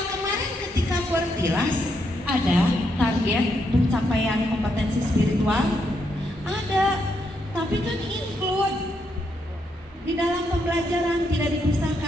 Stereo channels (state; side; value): normal; both; correlation 0.78